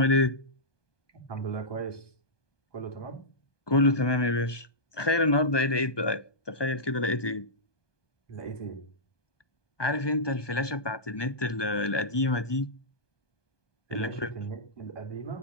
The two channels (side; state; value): right; late; 1.2 ms